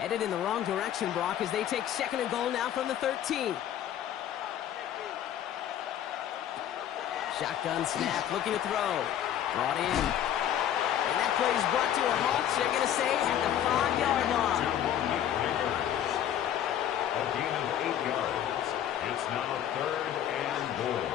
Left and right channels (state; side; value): quieter; right; 10.6 dB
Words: in the wrong direction, Brock, as they take second and goal now from the 13. Shotgun snap, looking to throw. Brought in. And that play is brought to a halt, so they're going to say at the 5-yard line. A gain of 8 yards. It's now third and goal.